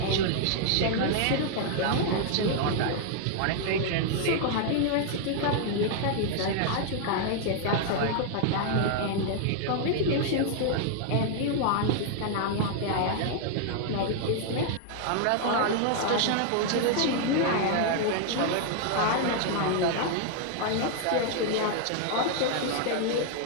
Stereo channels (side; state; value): both; different; correlation 0.00